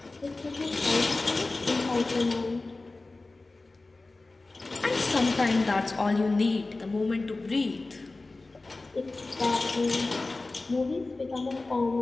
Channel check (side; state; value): right; quieter; 3.3 dB